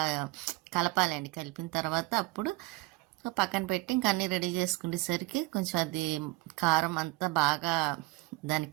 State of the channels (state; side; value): quieter; left; 21.3 dB